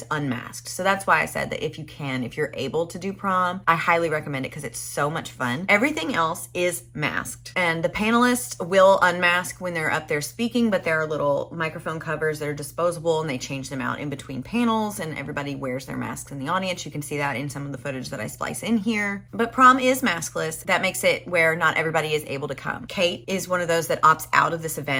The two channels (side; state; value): both; identical; correlation 1.00